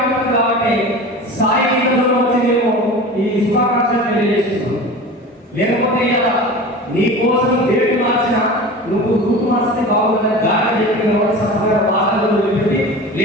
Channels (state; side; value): normal; both; correlation 0.34